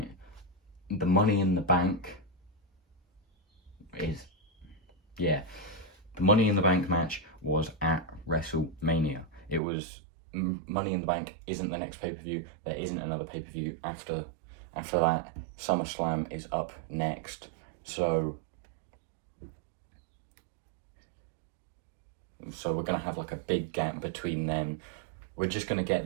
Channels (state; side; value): drops out; left; at 9.6 s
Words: The Money in the Bank the Money in the Bank match was at WrestleMania. It was Money in the Bank isn't the next pay-per-view. There isn't another pay-per-view after that. SummerSlam is up next. So we're going to have like a big gap between them. We're just going to get